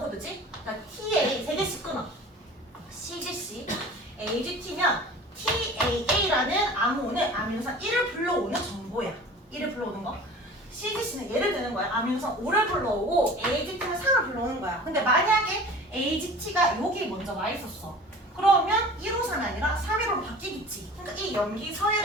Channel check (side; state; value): both; normal; correlation 0.41